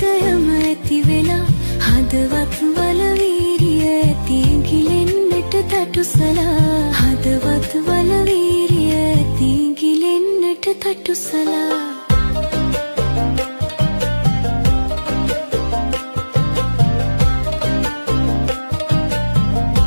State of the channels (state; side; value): inverted; both; correlation -1.00